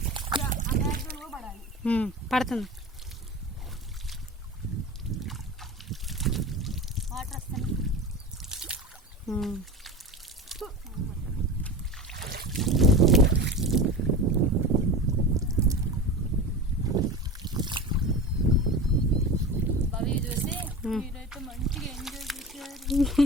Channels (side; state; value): both; normal; correlation 0.30